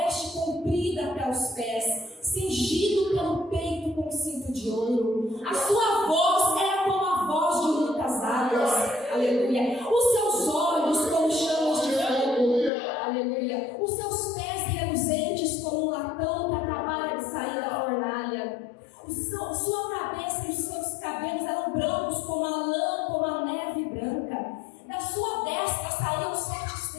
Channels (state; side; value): drops out; right; at 12.7 s